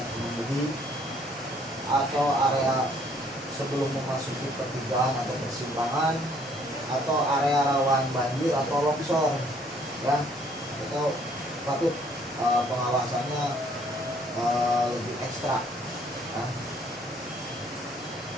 pengemudi atau area sebelum memasuki pertigaan atau persimpangan atau area rawan banjir atau longsor, ya. Itu patut pengawasannya lebih ekstra, ya.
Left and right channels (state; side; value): normal; both; correlation 0.62